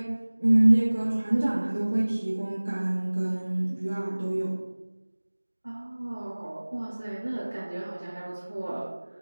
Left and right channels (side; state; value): both; inverted; correlation -1.00